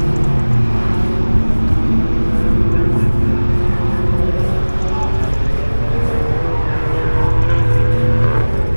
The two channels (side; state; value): both; inverted; correlation -1.00